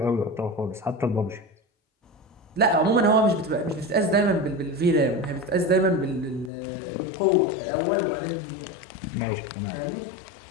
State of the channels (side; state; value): right; drops out; at 6.5 s